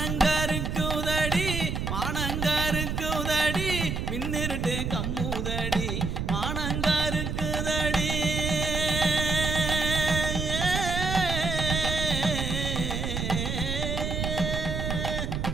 மானங்கருக்குதடி மின்னிருட்டு கம்முதடி மானங்கருக்குதடி.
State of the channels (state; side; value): noise; right; rumble, 2 dB below the sound